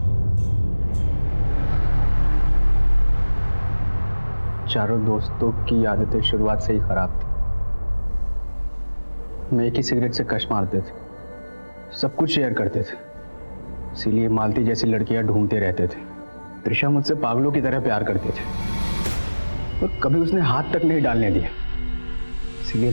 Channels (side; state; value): both; inverted; correlation -1.00